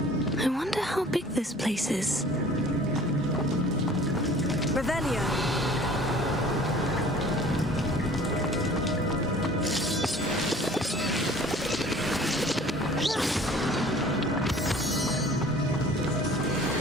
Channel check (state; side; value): normal; both; correlation 0.49